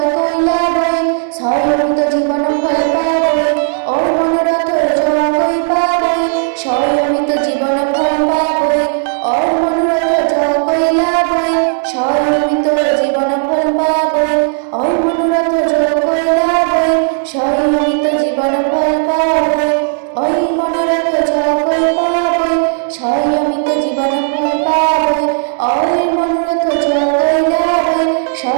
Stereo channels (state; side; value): silent; left; digital silence